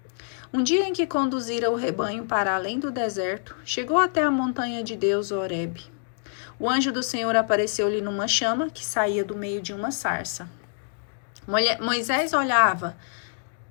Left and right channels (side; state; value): right; silent; digital silence